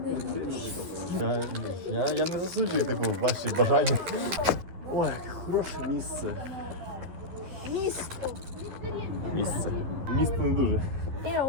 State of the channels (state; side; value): late; left; 12 ms